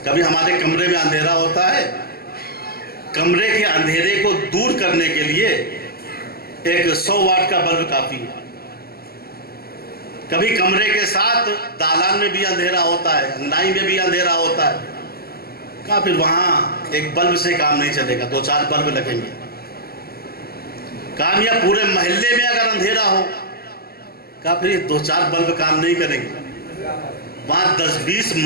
کبھی ہمارے کمرے میں اندھیرا ہوتا ہے، کمرے کے اندھیرے کو دور کرنے کے لیے ایک 100 واٹ کا بلب کافی ہے۔ کبھی کمرے کے ساتھ دالان میں بھی اندھیرا ہوتا ہے، انگنائی میں بھی اندھیرا ہوتا ہے، کہا پھر وہاں ایک بلب سے کام نہیں چلے گا، 2-4 بلب لگیں گے۔ کام یا پورے محلے میں اگر اندھیرا ہو، کہا پھر یہ 2-4 بلب کام نہیں کریں گے، وہاں 10-20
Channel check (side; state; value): right; late; 0.45 ms